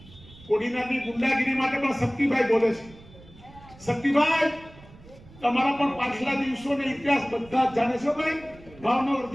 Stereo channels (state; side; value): noise; right; rumble, 22 dB below the sound